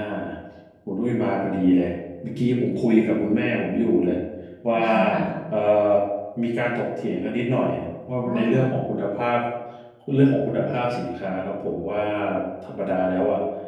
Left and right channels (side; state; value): both; identical; correlation 1.00